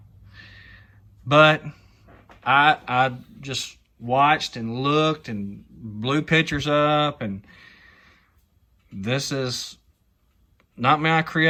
but I just watched and looked and blew pictures up, and this is not my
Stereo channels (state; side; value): identical; both; correlation 1.00